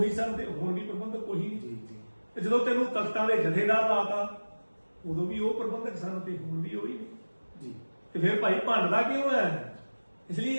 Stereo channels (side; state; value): both; inverted; correlation -1.00